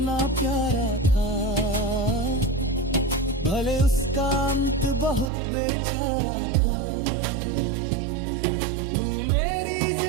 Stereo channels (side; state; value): left; drops out; at 5.3 s